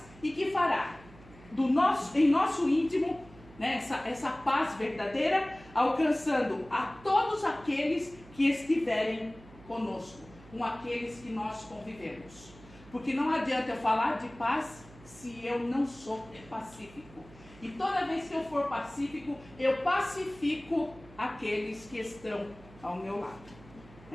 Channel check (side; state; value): right; noise; hum, 21 dB below the sound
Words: e que fará em nosso íntimo, né, essa paz verdadeira, alcançando a todos aqueles que estiverem conosco, com aqueles que nós convivemos. Porque não adianta eu falar de paz se eu não sou pacífico. E toda vez que eu for pacífico, eu pacifico aqueles que estão ao meu lado.